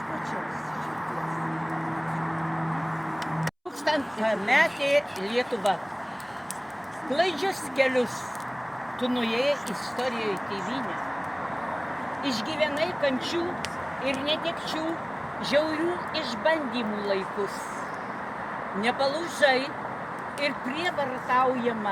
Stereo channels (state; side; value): identical; both; correlation 1.00